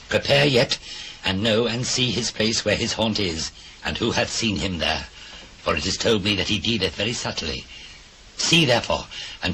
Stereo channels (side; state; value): both; identical; correlation 1.00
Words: prepare yet, and know and see his place where his haunt is, and who hath seen him there. For it is told me that he dealeth very subtly. See therefore,